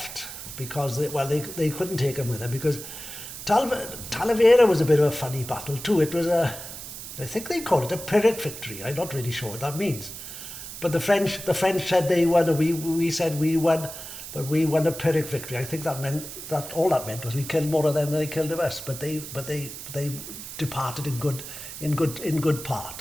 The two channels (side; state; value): right; noise; hiss, 10 dB below the sound